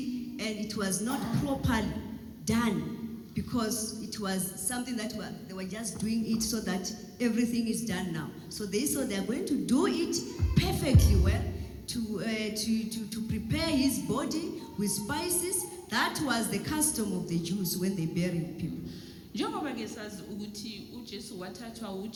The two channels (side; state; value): both; identical; correlation 1.00